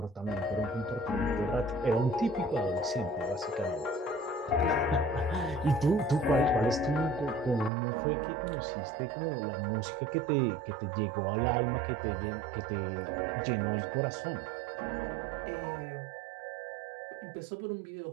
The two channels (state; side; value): drops out; left; at 7.7 s